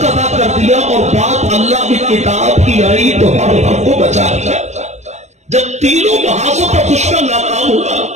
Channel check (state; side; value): late; left; 0.33 ms